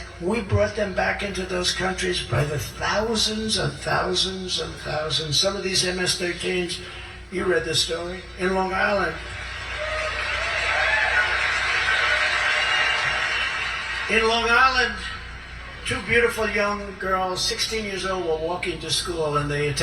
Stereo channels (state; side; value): identical; both; correlation 1.00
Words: We brought them back into those countries by the thousands and thousands and thousands. Some of these MS-13s, you read the story, in Long Island. In Long Island, 2 beautiful young girls, 16 years old, were walking to school and they